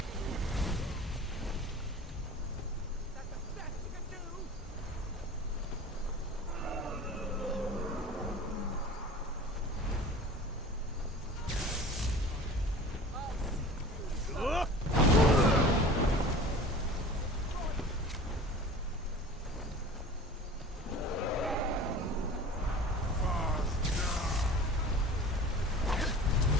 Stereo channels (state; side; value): normal; both; correlation 0.40